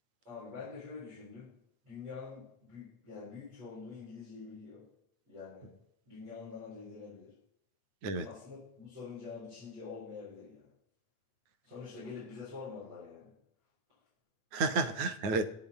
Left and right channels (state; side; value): late; left; 9.3 ms